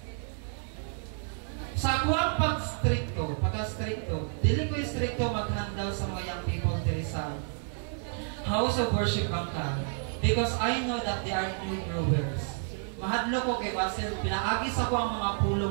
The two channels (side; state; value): left; silent; 55 dB below the other